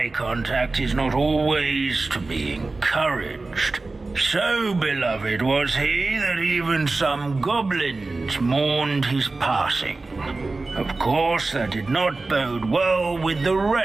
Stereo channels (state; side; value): quieter; left; 3.5 dB